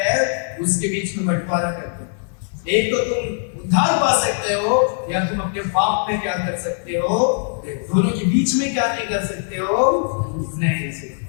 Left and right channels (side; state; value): right; silent; 56 dB below the other